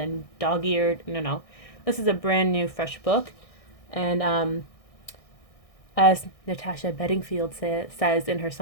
dog-eared. No, no. This is a brand new, fresh book. And as Natasha Bedingfield says in her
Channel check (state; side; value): late; right; 1.6 ms